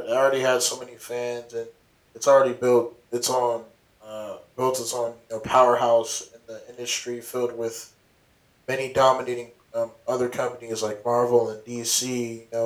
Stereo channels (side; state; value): both; identical; correlation 1.00